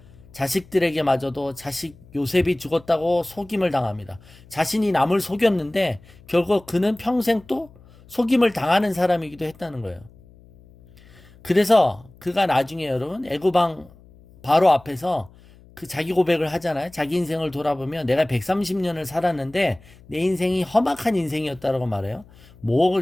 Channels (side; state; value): left; noise; hum, 25 dB below the sound